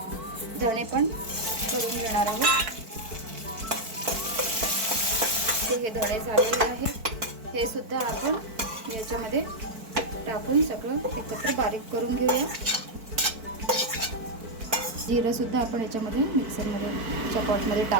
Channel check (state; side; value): late; left; 4.5 ms